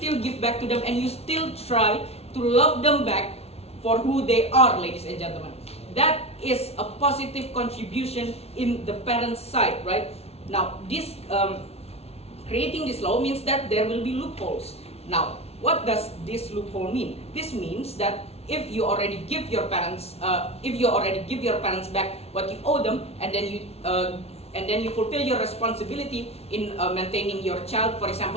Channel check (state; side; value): late; right; 0.30 ms